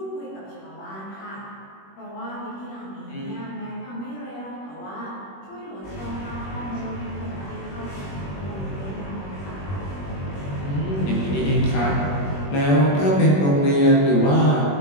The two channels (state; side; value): late; right; 21 ms